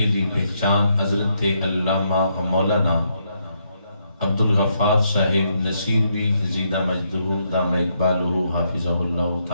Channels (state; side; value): inverted; both; correlation -0.77